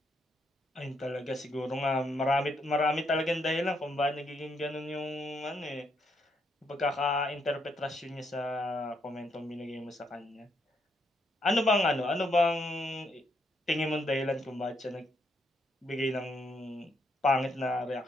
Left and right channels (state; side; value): normal; both; correlation 0.76